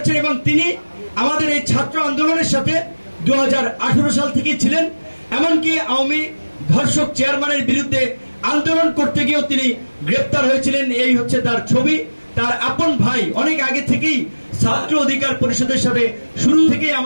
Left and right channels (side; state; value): both; inverted; correlation -1.00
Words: এবং তিনি আমাদের এই ছাত্র আন্দোলনের সাথে 2018 সাল থেকেই ছিলেন। এমনকি আওয়ামী ধর্ষক চেয়ারম্যানের বিরুদ্ধে আন্দোলন করতে গিয়েও তিনি গ্রেপ্তার হয়েছিলেন। এই হচ্ছে তার ছবি। তার আপন ভাই অনেক আগে থেকেই ছাত্র অধিকার পরিষদের সাথে শুরু থেকেই